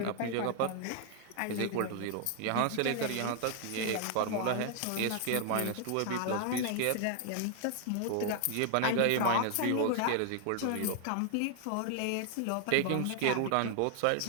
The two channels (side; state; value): both; different; correlation 0.00